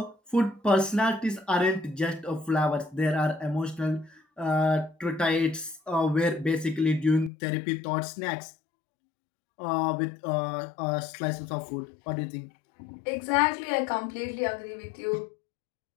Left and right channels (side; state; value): right; drops out; at 7.3 s